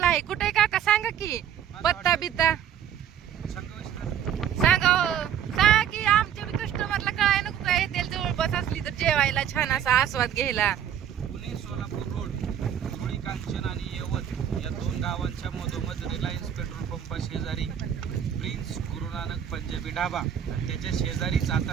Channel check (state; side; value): quieter; left; 9.4 dB